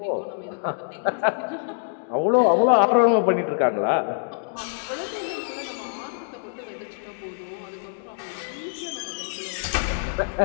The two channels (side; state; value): right; silent; digital silence